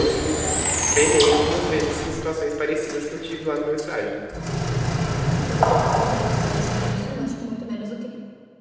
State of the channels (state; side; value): identical; both; correlation 1.00